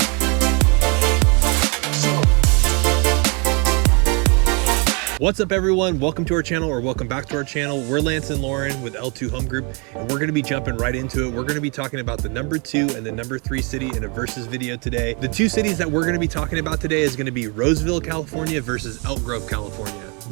What's up everyone, welcome to our channel, or welcome back to our channel. We're Lance and Lauren with L2 Home Group, and we're going to be jumping right into it. We're going to be talking about the number 2 and the number 3 city in a versus video today. The two cities that we're going to be talking about today is going to be Roseville, California versus Elk Grove, California.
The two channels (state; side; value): quieter; left; 33.2 dB